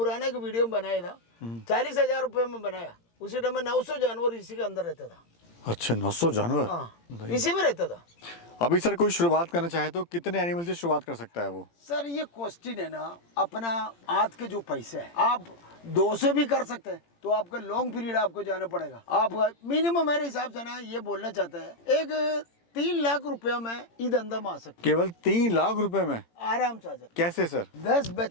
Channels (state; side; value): late; right; 18 ms